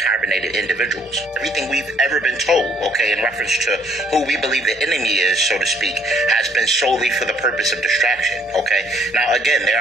individuals. Everything we've ever been told, okay, in reference to who we believe the enemy is, so to speak, has been solely for the purpose of distraction, okay? Now, again, there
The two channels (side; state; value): both; normal; correlation 0.64